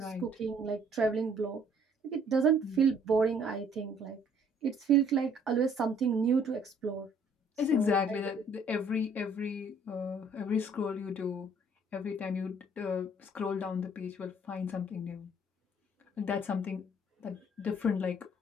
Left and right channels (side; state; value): both; normal; correlation 0.60